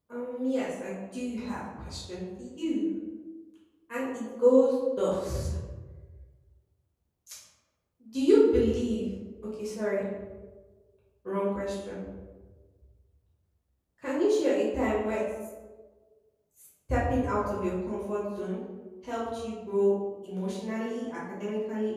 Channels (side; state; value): both; identical; correlation 1.00